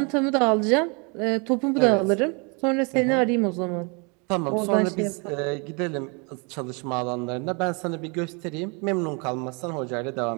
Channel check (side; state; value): left; quieter; 32.6 dB